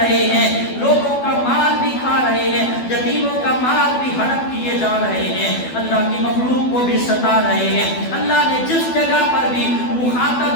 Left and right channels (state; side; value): late; right; 12 ms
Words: ہیں، لوگوں کا مال بھی کھا رہے ہیں، یتیموں کا مال بھی ہڑپ کیے جا رہے ہیں، اللہ کی مخلوق کو بھی ستا رہے ہیں۔ اللہ نے جس جگہ پر بھی